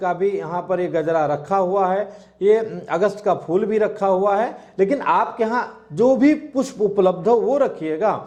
भी यहाँ पर ये गजरा रखा हुआ है। ये अगस्त का फूल भी रखा हुआ है। लेकिन आपके यहाँ जो भी पुष्प उपलब्ध हो वो रखिएगा।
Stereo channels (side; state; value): both; identical; correlation 1.00